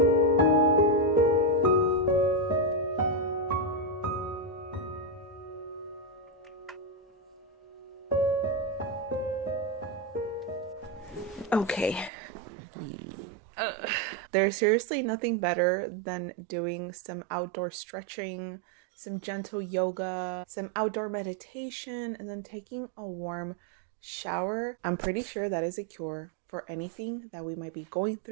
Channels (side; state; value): left; drops out; at 12.1 s